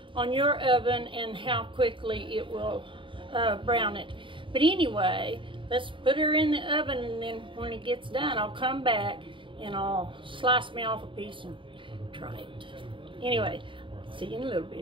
on your oven and how quickly it will brown it. But anyway, let's put her in the oven, and then when it gets done, I'll come back and I'll slice me off a piece and try it. Anyway, see you in a little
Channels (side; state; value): left; late; 0.25 ms